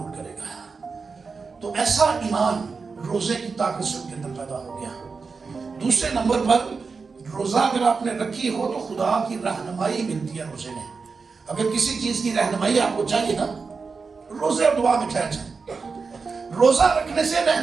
کرے گا۔ تو ایسا ایمان روزے کی طاقت سے ان کے اندر پیدا ہو گیا۔ دوسرے نمبر پر، روزہ اگر آپ نے رکھی ہو تو خدا کی رہنمائی ملتی ہے روزے میں۔ اگر کسی چیز کی رہنمائی آپ کو چاہیے نا، روزے اور دعا میں ٹھہر جائیں۔ روزہ رکھنے سے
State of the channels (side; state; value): left; quieter; 4.8 dB